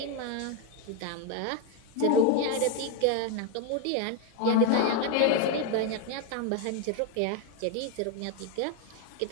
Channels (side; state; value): both; different; correlation 0.02